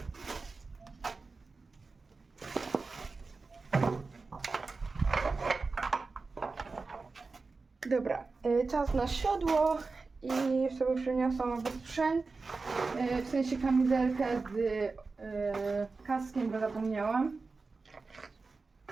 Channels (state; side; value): quieter; left; 4.1 dB